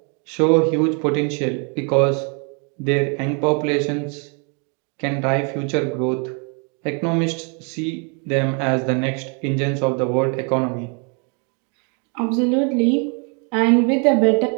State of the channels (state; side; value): quieter; left; 36.8 dB